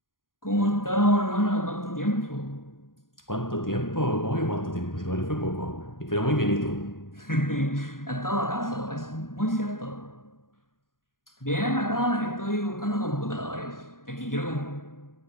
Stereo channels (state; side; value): late; right; 0.90 ms